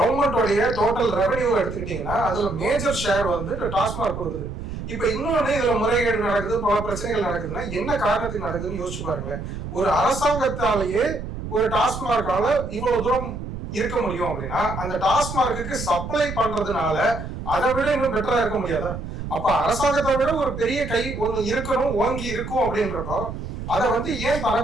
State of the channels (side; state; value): right; noise; rumble, 8 dB below the sound